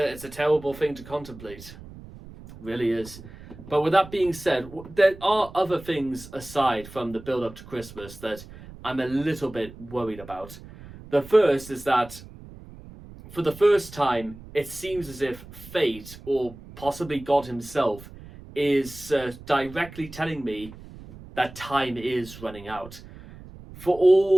terrible thing to contemplate. It really is. But with that being said, there are other things aside from the build up to Christmas that I'm a little bit worried about. The first is that for the first time, it seems as if fate, or possibly God himself, is directly telling me that time is running out. For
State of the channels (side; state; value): right; noise; rumble, 17 dB below the sound